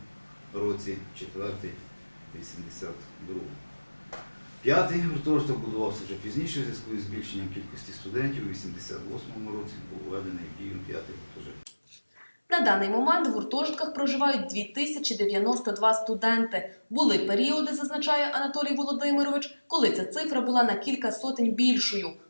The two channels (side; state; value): both; inverted; correlation -1.00